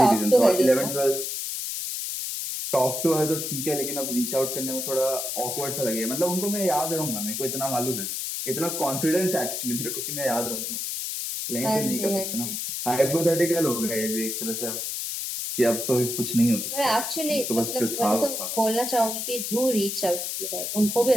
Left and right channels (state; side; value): noise; left; hiss, 3 dB below the sound